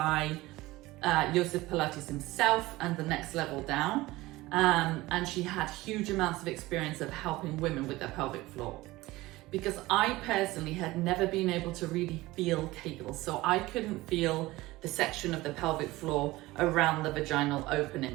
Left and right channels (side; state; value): left; quieter; 19.1 dB